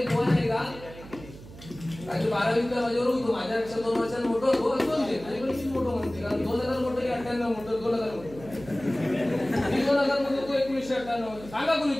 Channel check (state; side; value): noise; right; hum, 17 dB below the sound